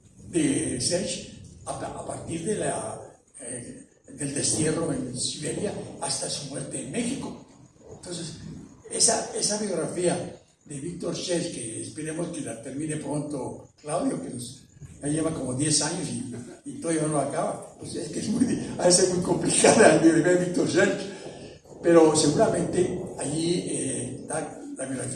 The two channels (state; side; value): identical; both; correlation 1.00